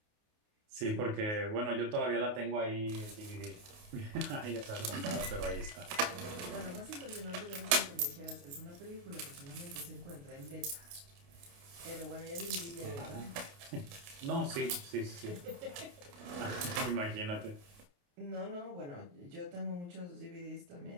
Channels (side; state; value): left; late; 28 ms